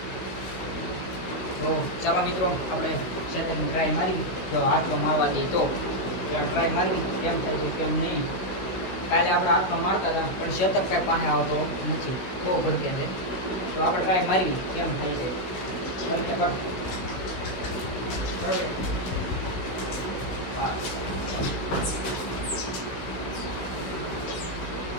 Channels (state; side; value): late; right; 16 ms